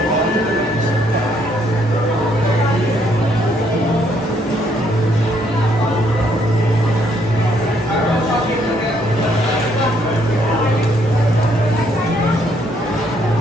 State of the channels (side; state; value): both; normal; correlation 0.69